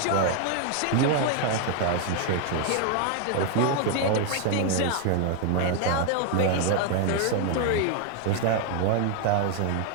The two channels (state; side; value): different; both; correlation 0.00